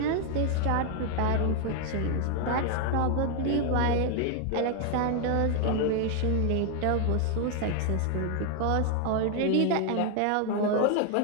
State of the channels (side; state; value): both; different; correlation 0.00